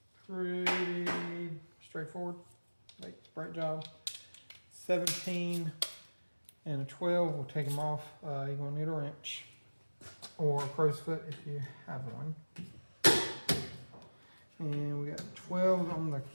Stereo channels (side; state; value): both; inverted; correlation -1.00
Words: Pretty straightforward. Like, brake job. 17 and a 12. We'll take them off. You're going to need a wrench. Or a crow's foot if you have one. And we got 12 on the